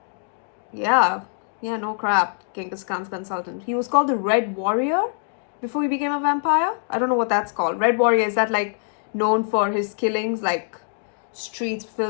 Yeah, no crap. Genghis Khan's consultant. He was called the Red Warrior before he became a vampire. I don't know what that's called. Red Warrior, is that like known for his killings, like streets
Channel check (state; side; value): silent; right; digital silence